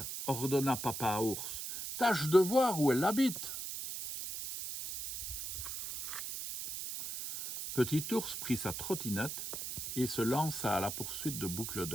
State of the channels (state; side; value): noise; right; hiss, 6 dB below the sound